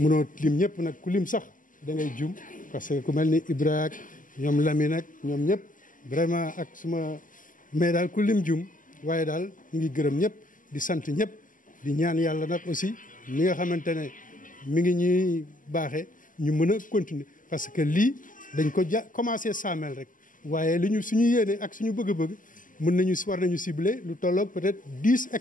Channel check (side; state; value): right; late; 0.38 ms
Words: lim ñëpp nag ku lim sax da ngay jum parce que ku mel ni Ibra ak ñoom Lamine ak ñoom ñëpp vraiment ak suma mais daal ku lim jum waaye daal ñu ngi gërëm ñëpp di sant ñëpp di ñaan yàlla nag aussi mi nga xamante ne mi ngi ñuy baaxee ñu mën a continuer parce que lii dañ ko commencé saamel rek waaye li ñu suñu yéene ak suñu bëgg-bëgg war nañu cibler lu tolloog peut-être 10